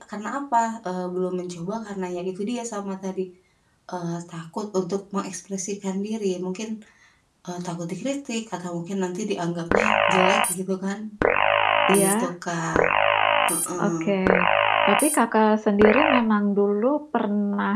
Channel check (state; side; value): identical; both; correlation 1.00